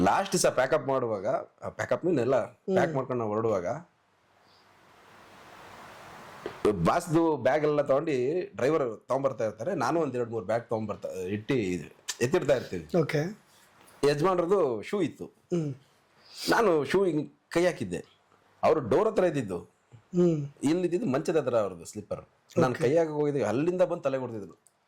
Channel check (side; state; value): both; identical; correlation 1.00